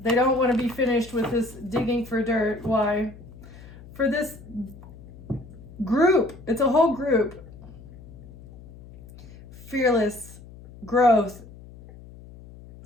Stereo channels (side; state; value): left; noise; hum, 19 dB below the sound